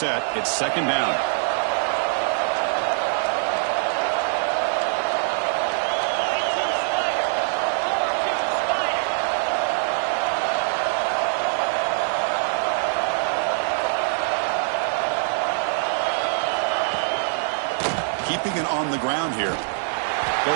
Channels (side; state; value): left; silent; digital silence